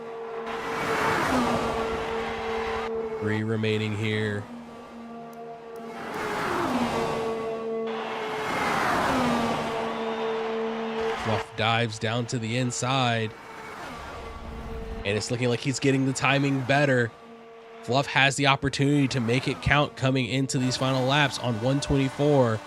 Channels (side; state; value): both; identical; correlation 1.00